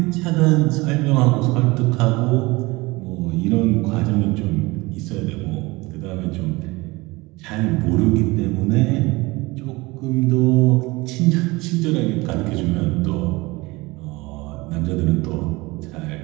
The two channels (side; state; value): left; quieter; 22.6 dB